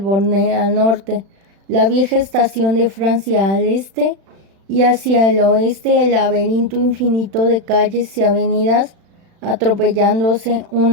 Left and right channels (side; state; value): left; late; 36 ms